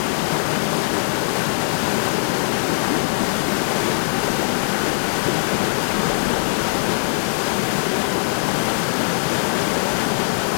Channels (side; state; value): right; silent; digital silence